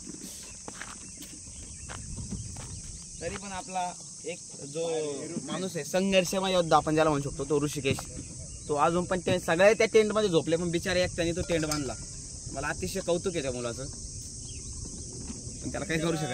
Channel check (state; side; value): identical; both; correlation 1.00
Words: तरी पण आपला एक जो माणूस आहे, संघर्षमय योद्धा आपण ज्याला म्हणू शकतो, तो ऋषिकेश, तो अजून पण ते सगळे त्या टेंट मध्ये झोपले, पण बिचारे एकट्याने तो टेंट बांधला. मला अतिशय कौतुक आहे त्या मुलाचं, पण त्याला काही करू